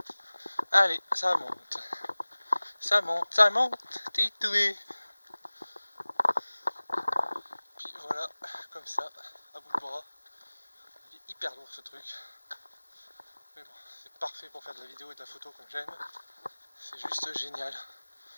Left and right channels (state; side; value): inverted; both; correlation -1.00